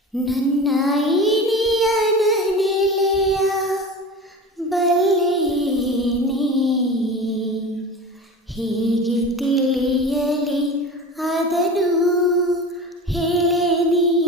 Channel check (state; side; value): normal; both; correlation 0.33